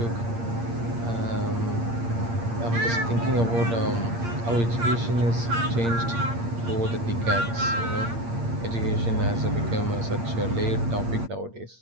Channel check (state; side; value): late; left; 8.7 ms